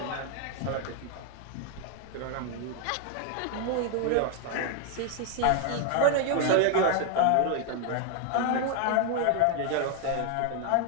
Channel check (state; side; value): different; both; correlation 0.01